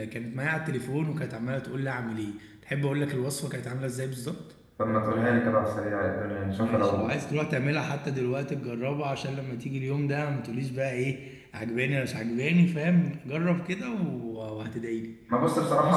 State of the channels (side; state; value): both; identical; correlation 1.00